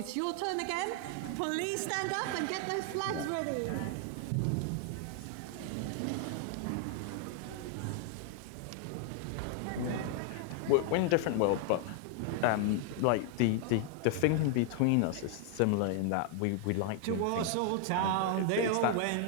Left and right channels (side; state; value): both; different; correlation 0.00